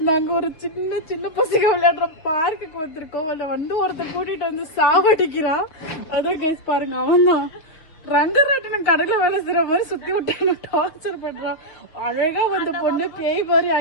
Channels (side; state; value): right; late; 6.2 ms